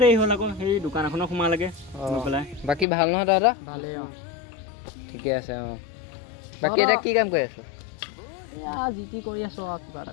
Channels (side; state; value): right; drops out; at 2.9 s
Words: দেৰি হ'ল আকৌ, সেই দোকান এখনত সোমালেগে গৈ পেলাই। বাকী ভাল নহয় তহঁতৰ? ভালেই অঁ। ঠিকে আছে অঁ। বাকী এতিয়া কি কাম কৰি আছ? এয়া যি টি কৰি আছোঁ আৰু কিবা